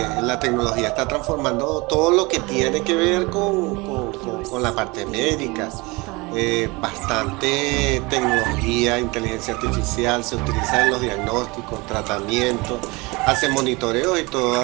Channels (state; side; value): quieter; left; 24.9 dB